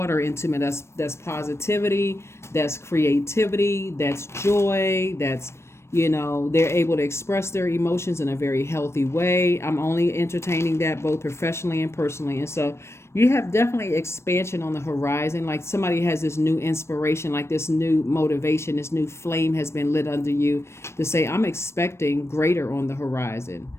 into me. That's positivity, that's creativity, that's joy, that's, you know, they're able to express their emotions in a very healthy way. I'm only entertaining that both professionally and personally. And so you have definitely expansion on the horizon. Like somebody has this new inspiration, like this new motivation, this new flame has been lit under you to say, I'm expecting greater on the horizon.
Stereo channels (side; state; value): right; late; 0.13 ms